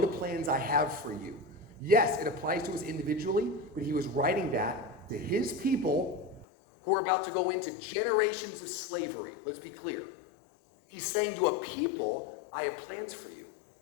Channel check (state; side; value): drops out; right; at 6.5 s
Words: plans I have for you. Yes, it applies to us individually, but he was writing that to his people who are about to go into generations of slavery. Let's be clear. He's saying to a people, I have plans for you.